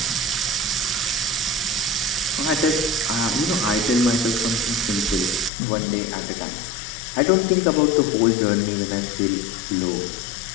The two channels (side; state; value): right; drops out; at 5.5 s